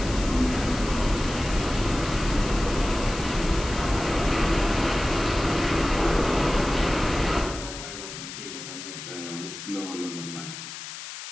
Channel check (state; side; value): noise; left; hiss, 10 dB below the sound